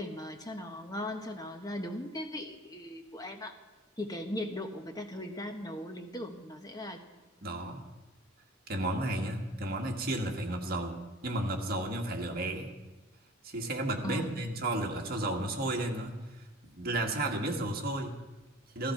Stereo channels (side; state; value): both; normal; correlation 0.45